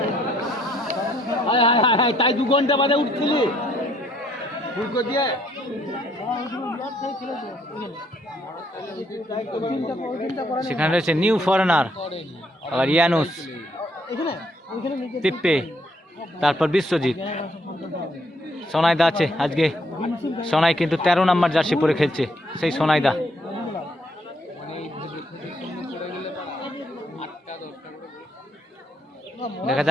তাই 2 ঘন্টা বাদে উঠছিলি দিয়ে সেখানে রয়েছে নিউ ফরেনার, আবার ইয়ানুস, পিপ্পে, তারপর বিশ্বজিৎ, সোনাইদা আছে আজকে। সোনাই কিন্তু 13 নম্বর জার্সি পরে খেলছে, সেই সোনাইদা। দেখা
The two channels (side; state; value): both; normal; correlation 0.69